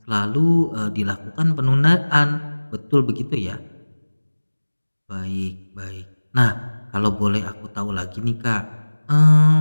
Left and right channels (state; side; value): inverted; both; correlation -1.00